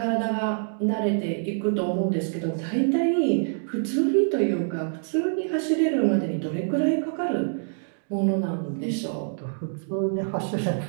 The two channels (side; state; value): left; silent; digital silence